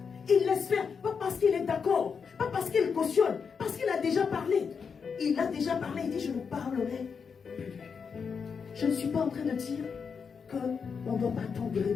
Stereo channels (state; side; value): quieter; right; 6.0 dB